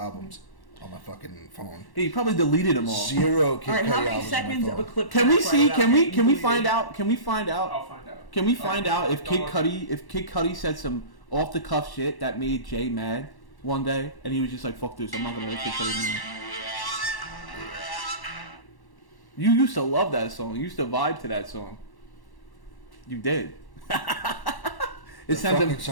on my fucking phone. Hey, you probably deleted them all. Zero Kid All right, Cudi how many albums seconds on of my a phone. clip? Can we see? play Can out? we find out? Can we find out? I'll find out. Can we find out if Kid Don't Cudi said some off the cuff shit that made Jay mad one day, and he was just like, "Fuck this, I'm not gonna like Kid Cudi anymore." You used to love that song. You used to vibe to that song. You did. The It sent fucking him.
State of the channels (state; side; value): late; right; 1.1 ms